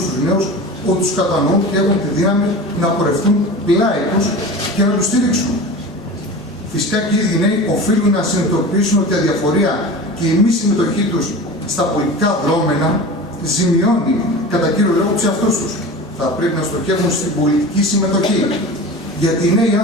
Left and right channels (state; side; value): normal; both; correlation 0.33